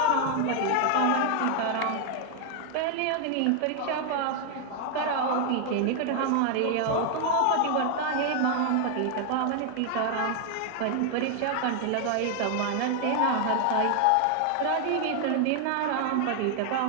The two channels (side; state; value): both; different; correlation 0.00